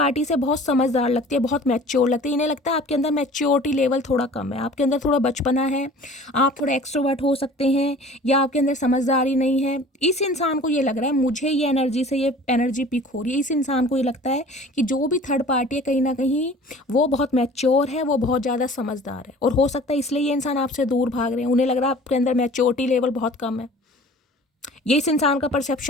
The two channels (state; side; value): normal; both; correlation 0.46